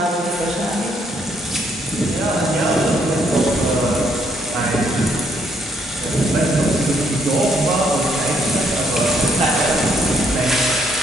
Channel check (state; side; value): normal; both; correlation 0.70